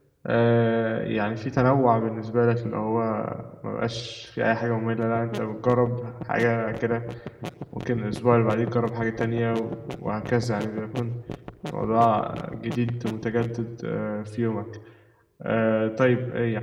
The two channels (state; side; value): identical; both; correlation 1.00